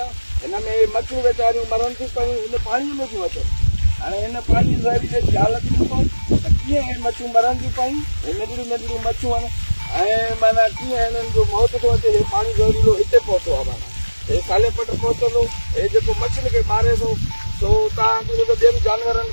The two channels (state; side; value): inverted; both; correlation -1.00